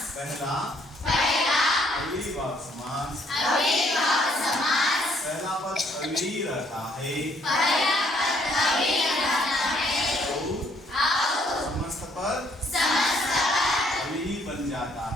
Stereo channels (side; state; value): both; normal; correlation 0.66